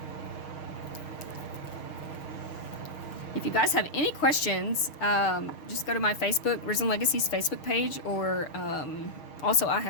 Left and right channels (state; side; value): late; right; 6.4 ms